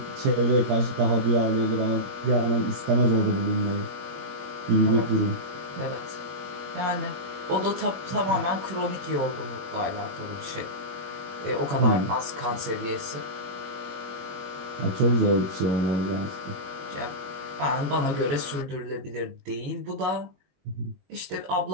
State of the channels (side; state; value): left; late; 21 ms